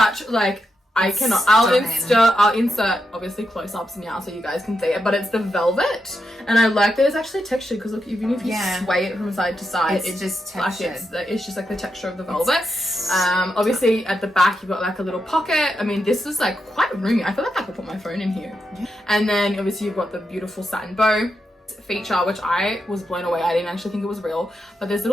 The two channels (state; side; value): normal; both; correlation 0.85